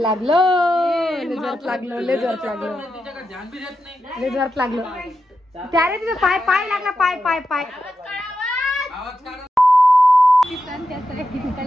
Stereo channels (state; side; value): normal; both; correlation 0.88